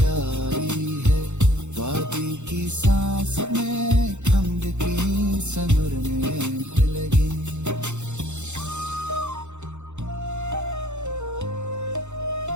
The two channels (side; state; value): left; late; 0.83 ms